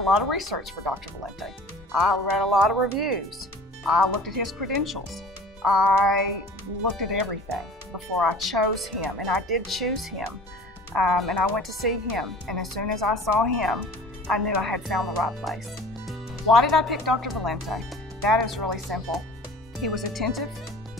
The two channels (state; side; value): normal; both; correlation 0.44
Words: lot of research for Dr. Valente. I read a lot of reviews. I looked at his credentials. I looked at everything before I chose him, and I did choose him. And I went to see him, and as soon as I saw him, I knew I had found the right place. Why did I pick Dr. Valente? That is really simple. He was attentive.